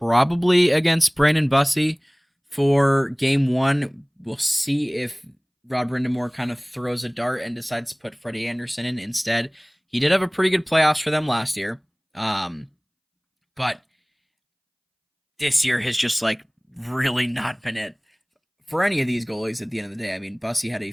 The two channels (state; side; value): identical; both; correlation 1.00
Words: against Brandon Bussey for game 1. We'll see if Rod Brindamore kind of throws a dart and decides to put Freddie Anderson in instead. He did have a pretty good playoffs for them last year. But this year has just really not been it for any of these goalies at the end of the day. I mean, Bussey had a